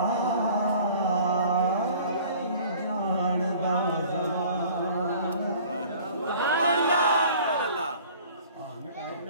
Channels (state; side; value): inverted; both; correlation -0.49